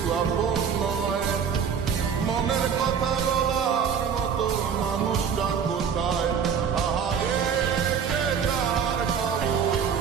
আপন নয়, মনের কথা বলার মতো মানুষটা কোথায়? আহারে সে তার খবর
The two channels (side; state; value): left; quieter; 7.2 dB